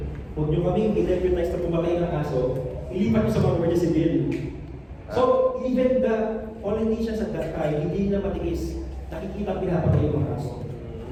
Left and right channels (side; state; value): both; identical; correlation 1.00